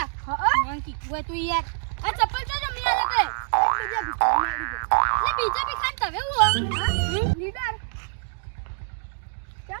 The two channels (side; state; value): left; silent; digital silence